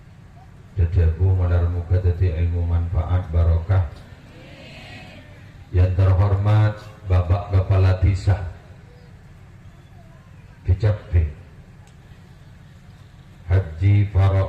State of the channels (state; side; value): identical; both; correlation 1.00